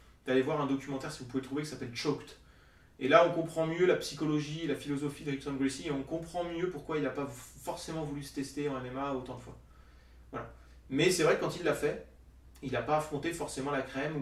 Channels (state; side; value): identical; both; correlation 1.00